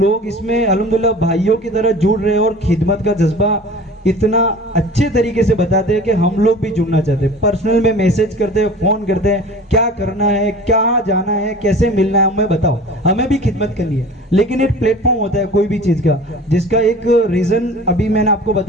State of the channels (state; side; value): normal; both; correlation 0.41